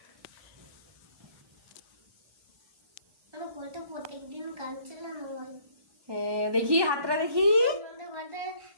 আমার ঘরে প্রত্যেকদিন গান চালানো হয়। হ্যাঁ দেখি হাতটা দেখি। আমাদের ঘরে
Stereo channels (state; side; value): late; left; 1.2 ms